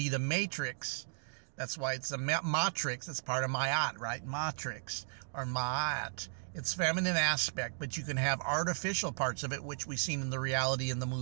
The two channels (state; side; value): silent; left; digital silence